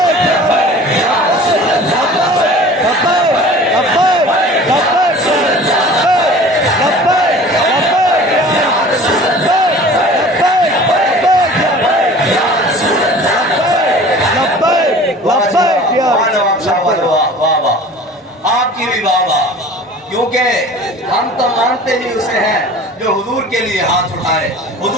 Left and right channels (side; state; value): both; normal; correlation 0.43